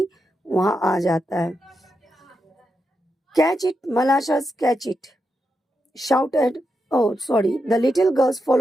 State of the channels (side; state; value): both; normal; correlation 0.85